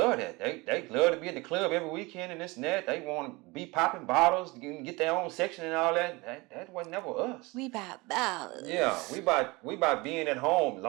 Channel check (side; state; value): left; quieter; 24.1 dB